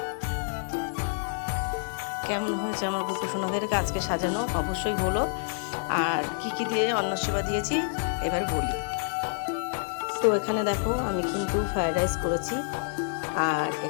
কেমন হয়েছে আমার গোপসোনাদেরকে আজকে সাজানো অবশ্যই বলো। আর কি দিয়ে অন্ন সেবা দিয়েছি এবার বলি। তো এখানে দেখো আমি কিন্তু ফ্রায়েড রাইস করেছি, আর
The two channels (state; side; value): silent; right; 59 dB below the other